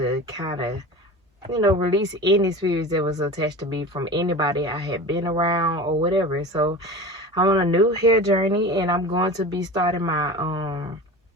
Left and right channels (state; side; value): normal; both; correlation 0.32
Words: kind of, release any spirits that was attached to me from anybody I had been around or whatever. So I'm on a new hair journey, and I'm going to be starting my